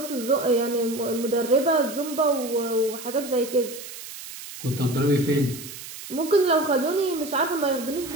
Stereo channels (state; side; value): noise; right; hiss, 12 dB below the sound